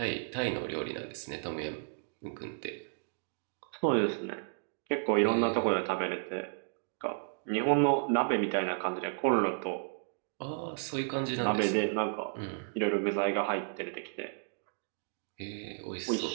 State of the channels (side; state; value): left; silent; digital silence